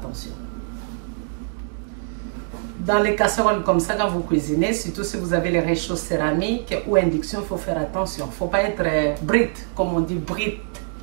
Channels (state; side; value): silent; left; 63 dB below the other